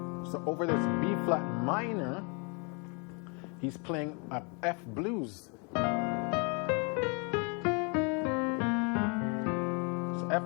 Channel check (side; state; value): right; quieter; 33.8 dB